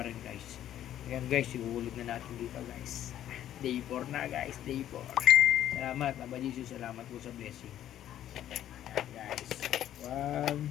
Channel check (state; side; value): quieter; right; 11.6 dB